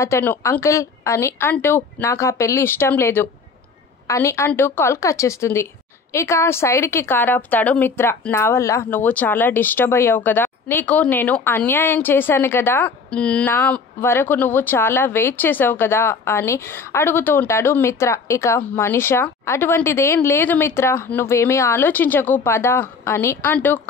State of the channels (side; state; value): right; quieter; 4.9 dB